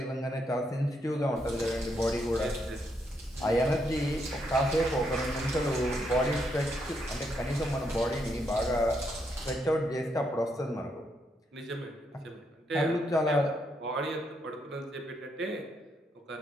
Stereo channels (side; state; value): both; normal; correlation 0.77